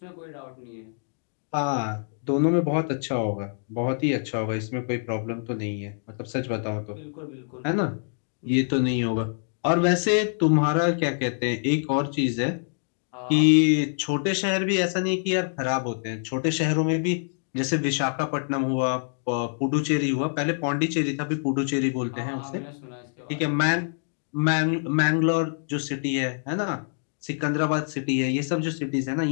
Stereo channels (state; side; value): silent; right; digital silence